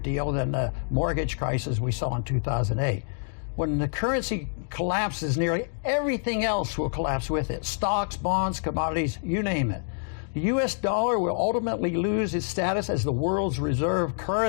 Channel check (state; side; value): silent; right; digital silence